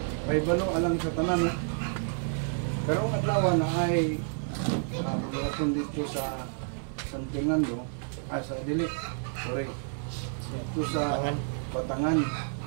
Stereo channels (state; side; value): silent; left; digital silence